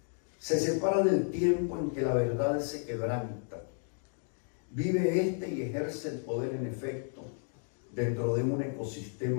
Se separa del tiempo en que la verdad se quebranta. Vive este y ejerce el poder en efecto dentro de un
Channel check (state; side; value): silent; right; 56 dB below the other